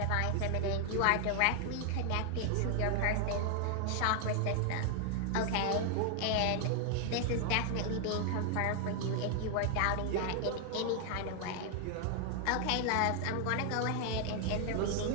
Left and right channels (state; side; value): different; both; correlation 0.00